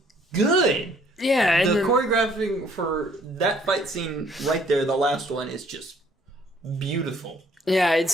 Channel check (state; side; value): normal; both; correlation 0.61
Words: good. Yeah. And the choreographing for that fight scene right there, the last one, is just beautiful. Yeah, it's